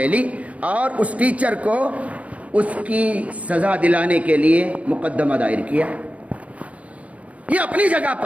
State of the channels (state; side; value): late; left; 0.066 ms